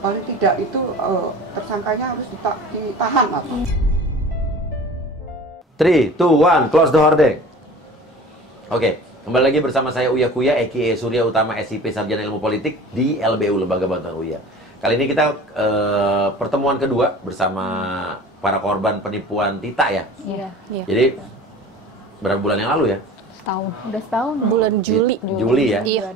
tidak itu tersangkanya harus ditahan, Mas. 3, 2, 1, close the hordeng. Oke, kembali lagi bersama saya Uya Kuya, a.k.a. Surya Utama SIP Sarjana Ilmu Politik di LBU, Lembaga Bantuan Uya. Kali ini kita pertemuan kedua bersama para korban penipuan Tita ya. Iya. Jadi berapa bulan yang lalu ya? Setahun. Udah setahun. Bulan Juli. Juli ya.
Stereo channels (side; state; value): both; normal; correlation 0.41